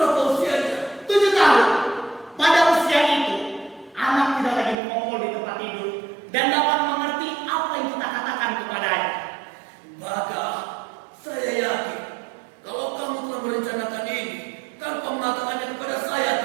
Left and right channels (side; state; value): left; drops out; at 4.8 s